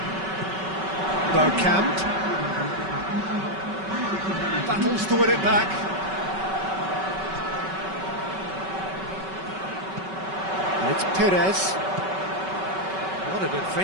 Bergkamp. Battles to win it back. And it's Pires. What an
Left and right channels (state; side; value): late; left; 5.3 ms